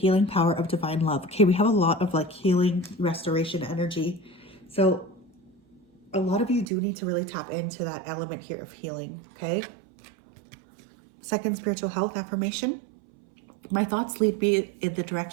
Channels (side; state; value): left; drops out; at 6.7 s